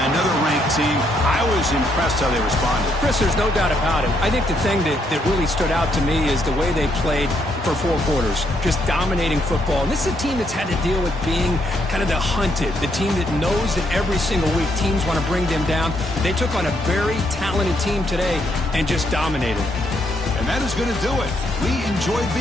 another ranked team. I was impressed how they responded. Chris, there's no doubt about it. I think the thing that really stood out to me is the way they played for 4 quarters, just dominating football. And this is a team that's had to deal with being kind of the hunted, the team that knows that every single week teams want to bring them down. They took on a very talented team today and just dominated. And that is going to do it. We enjoyed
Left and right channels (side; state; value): both; normal; correlation 0.74